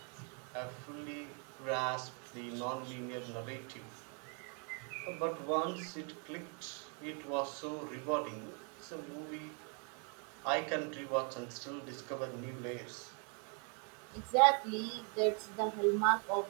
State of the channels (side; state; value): left; quieter; 38.8 dB